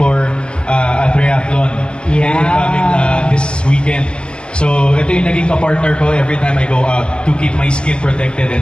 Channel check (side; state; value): right; late; 0.050 ms